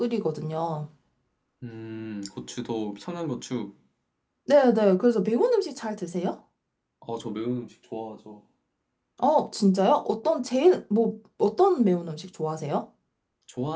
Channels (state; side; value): identical; both; correlation 1.00